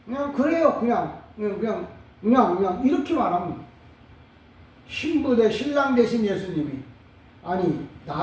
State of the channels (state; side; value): identical; both; correlation 1.00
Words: 그래요. 그냥 이렇게 말합니다. 신부 대 신랑 되신 예수님이 아니